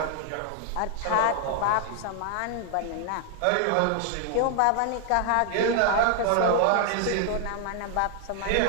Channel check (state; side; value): different; both; correlation 0.00